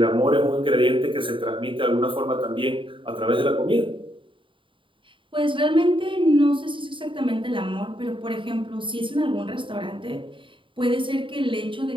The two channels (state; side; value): late; left; 0.25 ms